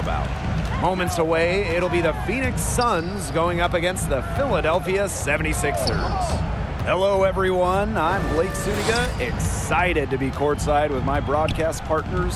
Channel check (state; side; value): identical; both; correlation 1.00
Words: Moments away, it'll be the Phoenix Suns going up against the Philadelphia 76ers. Hello, everyone. I'm Blake Suniga, excited to be courtside with my broadcast